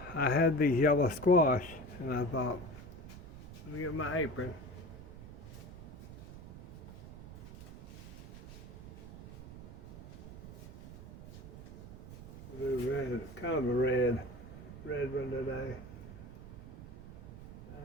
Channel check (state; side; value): noise; right; rumble, 13 dB below the sound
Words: I had these yellow squash, and I thought, let me get my apron. Red, kind of a red one today.